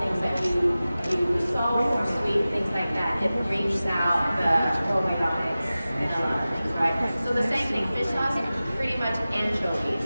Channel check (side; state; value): both; inverted; correlation -0.96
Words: that you do salt or sweet, things like that, it brings out the probiotics and a lot of things, right? So the same thing, fish sauce, pretty much anchovies.